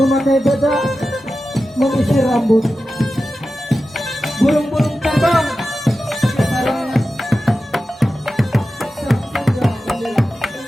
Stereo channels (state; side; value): normal; both; correlation 0.93